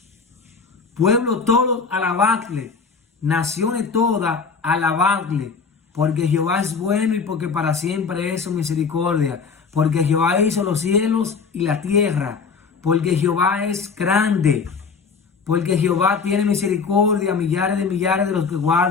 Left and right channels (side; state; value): right; quieter; 5.3 dB